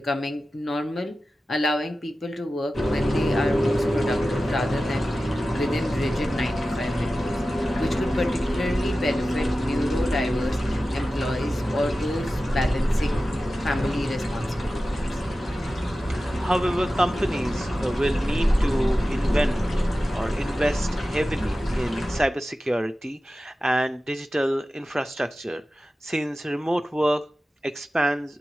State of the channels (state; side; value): normal; both; correlation 0.94